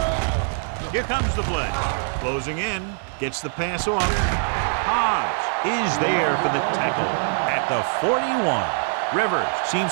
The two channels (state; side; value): silent; left; digital silence